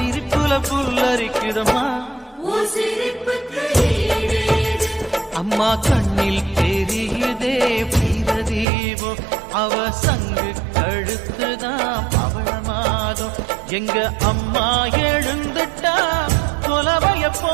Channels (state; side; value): drops out; left; at 8.7 s